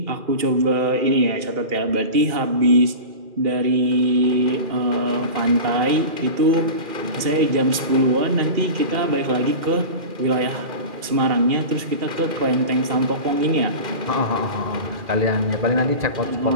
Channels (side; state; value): left; late; 2.4 ms